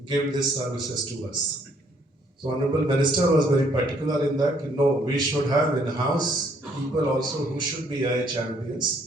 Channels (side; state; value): both; normal; correlation 0.66